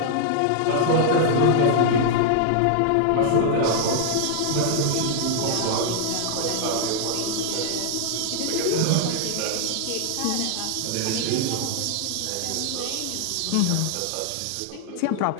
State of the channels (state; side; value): different; both; correlation -0.01